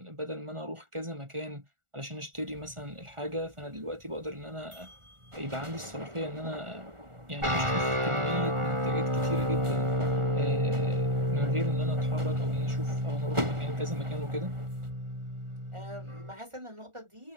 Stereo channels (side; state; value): left; late; 1.4 ms